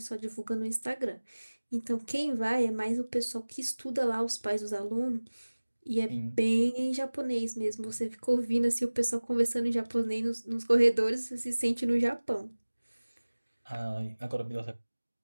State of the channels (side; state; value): both; inverted; correlation -1.00